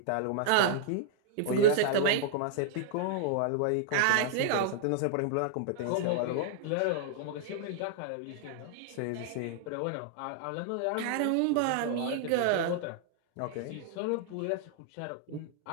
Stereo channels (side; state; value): both; different; correlation -0.01